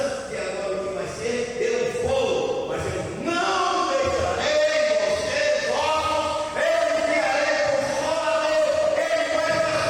que agora o que vai ser, eu vou, mas eu não deixarei.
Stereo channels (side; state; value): both; identical; correlation 1.00